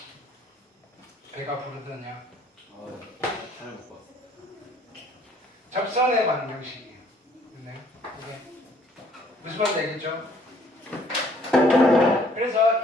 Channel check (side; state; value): both; normal; correlation 0.61